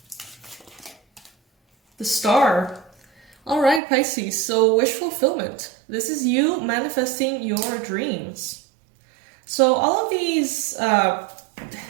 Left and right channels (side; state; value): left; drops out; at 3.8 s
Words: The Star. All right, Pisces, so wish fulfillment. This is you manifesting your dreams. So all of these